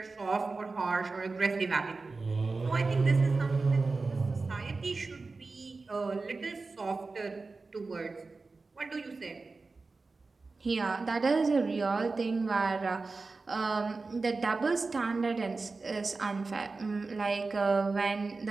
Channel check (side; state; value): left; quieter; 3.9 dB